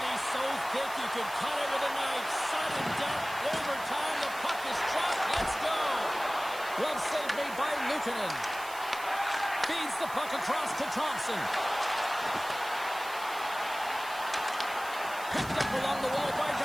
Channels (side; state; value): right; noise; hiss, 15 dB below the sound